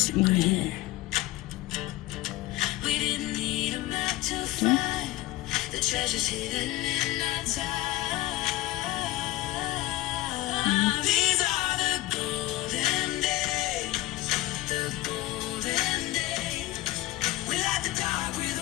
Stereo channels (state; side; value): quieter; right; 17.0 dB